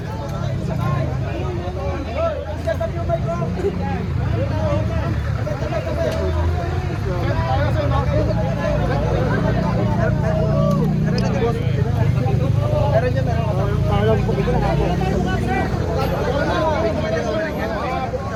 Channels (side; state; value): both; identical; correlation 1.00